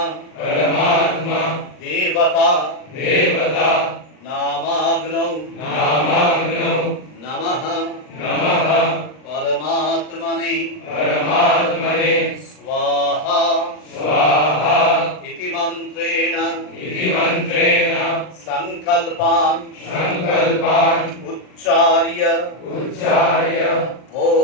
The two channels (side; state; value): right; late; 39 ms